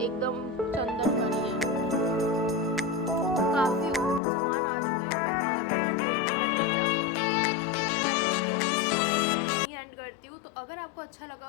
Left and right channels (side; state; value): right; drops out; at 4.2 s